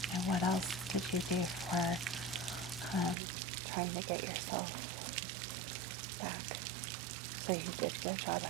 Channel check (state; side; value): drops out; left; at 3.2 s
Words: And what else did you do for trying to get yourself back? So you did go job